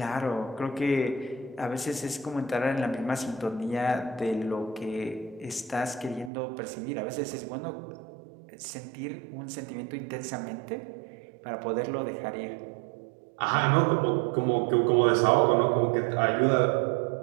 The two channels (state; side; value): drops out; left; at 6.3 s